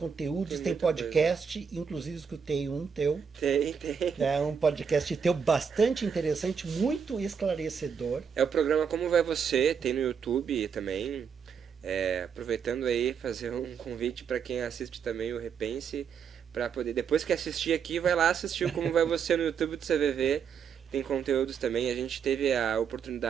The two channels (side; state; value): left; quieter; 6.8 dB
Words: tem muita podcast, inclusive escutei um teu. Tem. É um podcast teu bastante interessante, muito esclarecedor. É o programa Como Vai Você, tem no YouTube também. Aproveitando aí, fazer um convite para quem assiste também o Repense, para poder, depois que assistir aqui, vai lá assistir o Como Vai Você no YouTube do CVV. Tem conteúdos também. A gente teve a